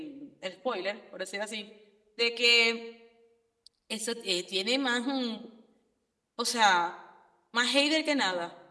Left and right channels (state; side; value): identical; both; correlation 1.00